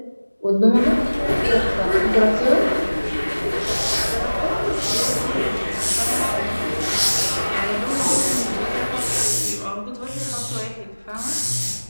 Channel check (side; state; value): both; inverted; correlation -1.00